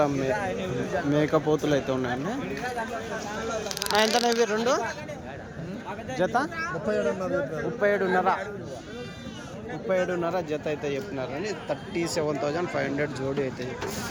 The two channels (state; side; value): identical; both; correlation 1.00